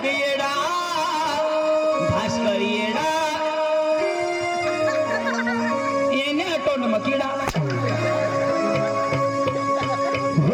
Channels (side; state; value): both; identical; correlation 1.00